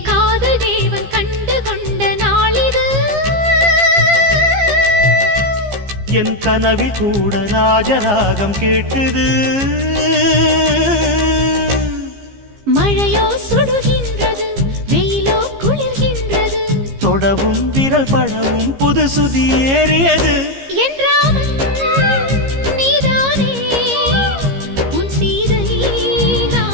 காதல் தேவன் கண்டு கொண்ட நாளிது என் கனவில் கூட ராஜராகம் கேட்குது மழையோ சுடுகின்றது வெயிலோ குளிர்கின்றது தொடவும் விரல் படவும் புது சுதி ஏறியது என் ராமன் நீதானே உன் சீதை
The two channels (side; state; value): left; late; 15 ms